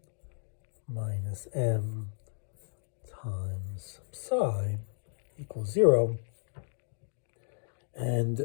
minus m times psi equals 0. And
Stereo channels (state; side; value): silent; right; digital silence